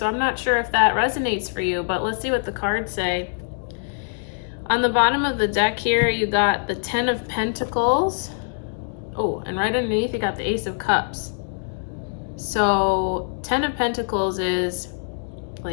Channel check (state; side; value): silent; right; digital silence